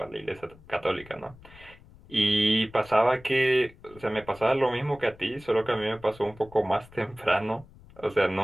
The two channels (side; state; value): left; noise; rumble, 23 dB below the sound